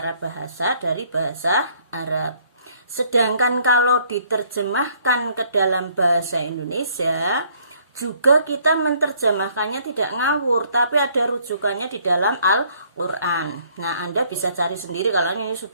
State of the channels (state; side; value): inverted; both; correlation -0.64